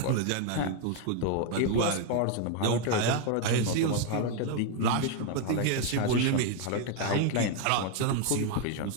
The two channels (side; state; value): both; different; correlation 0.01